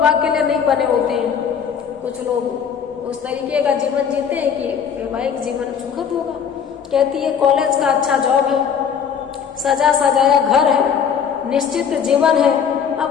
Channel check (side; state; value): right; quieter; 7.4 dB